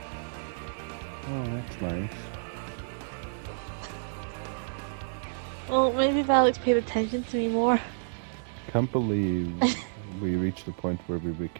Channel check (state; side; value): silent; left; digital silence